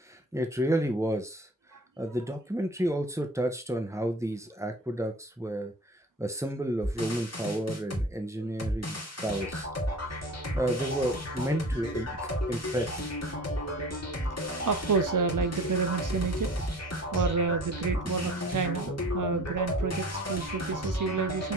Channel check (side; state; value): both; normal; correlation 0.42